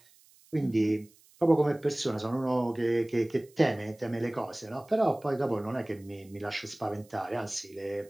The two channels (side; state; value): right; noise; hiss, 28 dB below the sound